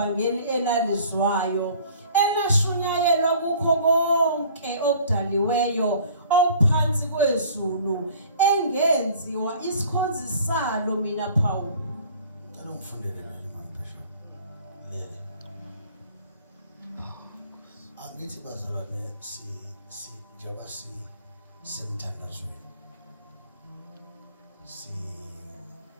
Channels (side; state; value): both; inverted; correlation -0.50